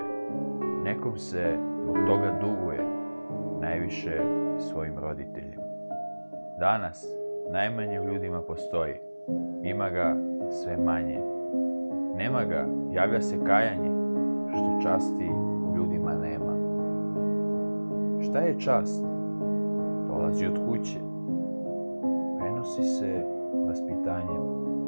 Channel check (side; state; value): both; inverted; correlation -1.00